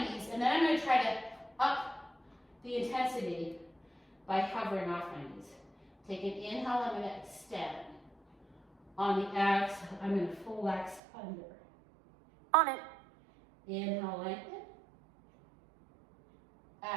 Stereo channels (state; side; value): drops out; left; at 11.0 s